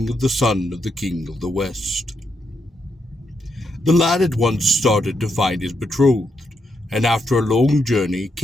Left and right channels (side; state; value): both; normal; correlation 0.81